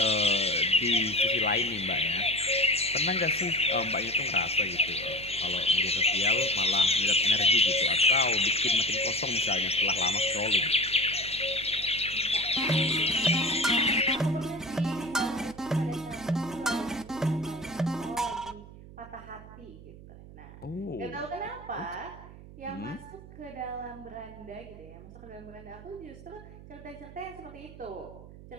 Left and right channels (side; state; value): right; noise; hum, 17 dB below the sound